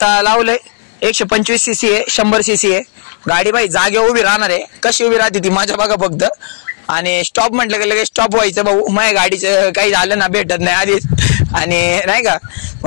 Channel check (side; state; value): right; silent; digital silence